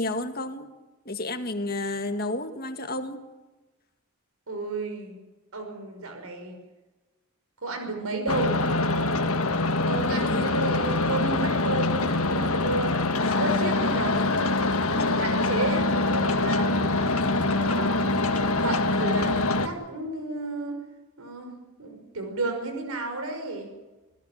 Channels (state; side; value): normal; both; correlation 0.01